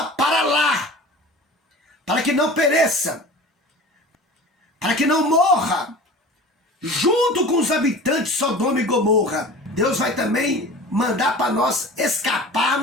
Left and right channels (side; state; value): both; normal; correlation 0.38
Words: para lá, para que não pereça, para que não morra, junto com os habitantes de Sodoma e Gomorra. Deus vai também mandar para nós